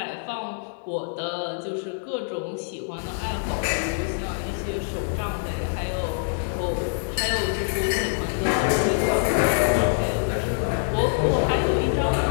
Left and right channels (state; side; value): silent; right; digital silence